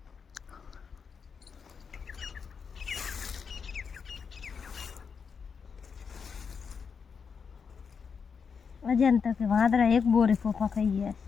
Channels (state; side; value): quieter; right; 6.1 dB